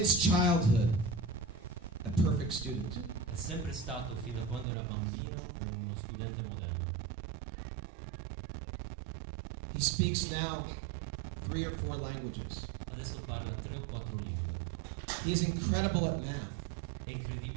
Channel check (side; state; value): left; drops out; at 4.7 s